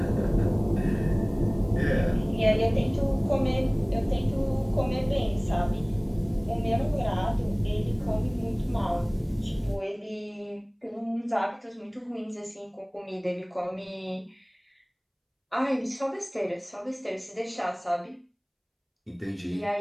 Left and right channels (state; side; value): identical; both; correlation 1.00